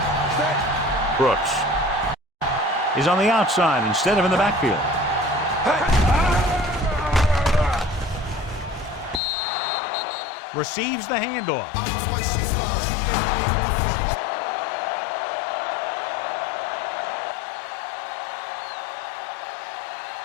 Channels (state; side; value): drops out; right; at 9.2 s